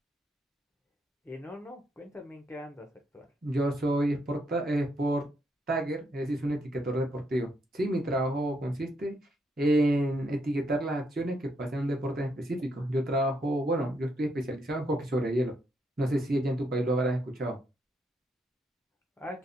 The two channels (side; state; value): both; normal; correlation 0.77